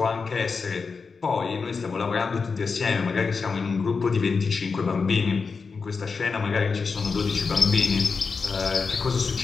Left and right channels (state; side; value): quieter; right; 4.9 dB